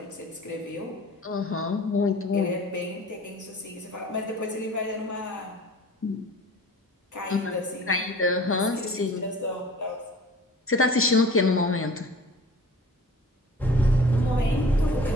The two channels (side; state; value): both; normal; correlation 0.44